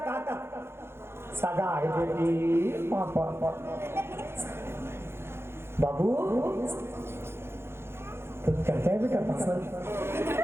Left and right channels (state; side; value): late; left; 0.12 ms